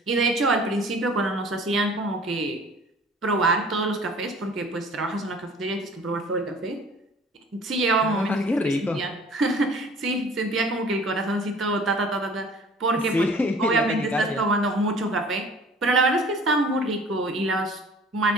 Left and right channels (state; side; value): normal; both; correlation 0.49